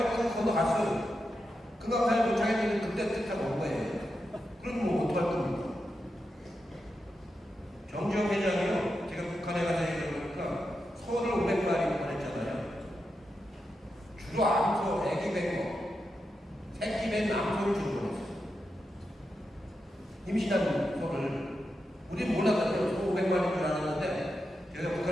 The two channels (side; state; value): both; normal; correlation 0.88